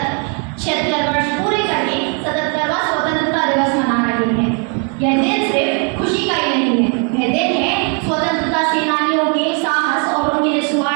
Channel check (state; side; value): quieter; left; 38.5 dB